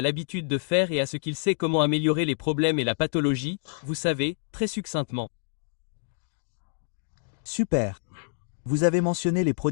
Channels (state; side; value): silent; right; digital silence